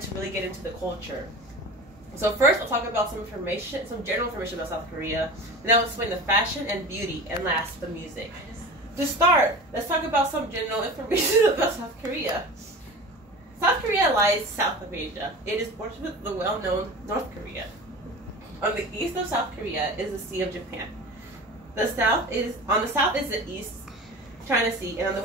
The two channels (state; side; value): normal; both; correlation 0.34